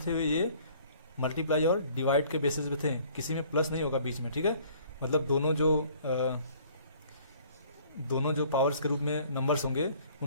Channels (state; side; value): inverted; both; correlation -0.56